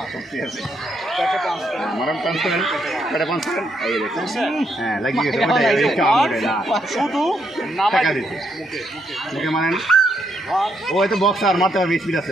ও তো বক্সার মারতে পারবে, স্পিড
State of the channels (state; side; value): normal; both; correlation 0.77